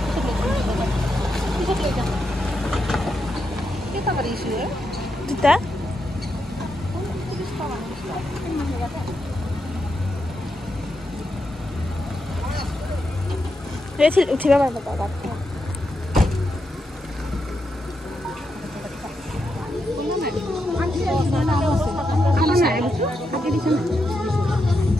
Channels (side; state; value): both; normal; correlation 0.84